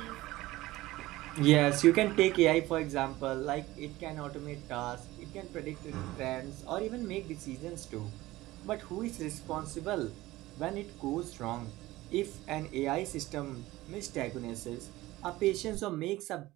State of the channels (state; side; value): quieter; left; 17.9 dB